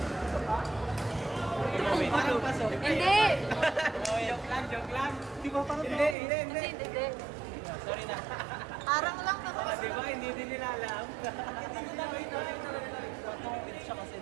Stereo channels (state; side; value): drops out; left; at 6.2 s